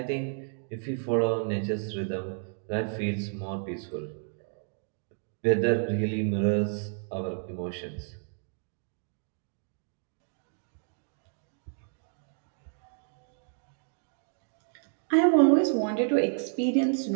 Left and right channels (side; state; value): left; silent; digital silence